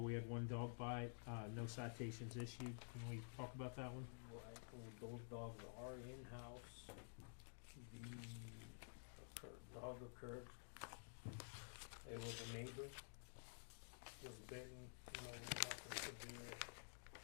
had one dog bite, no citations issued. Can we talk about that one? Right, well, those dogs are in-house. The dog occurred, it was a neighbor, was bitten, nothing severe,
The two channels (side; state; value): right; silent; digital silence